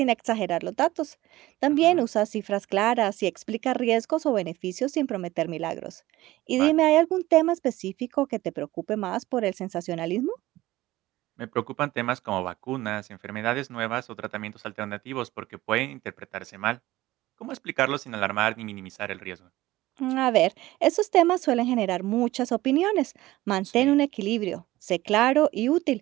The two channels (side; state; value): left; quieter; 17.2 dB